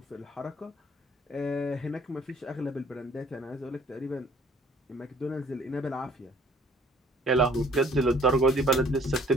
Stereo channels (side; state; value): both; normal; correlation 0.57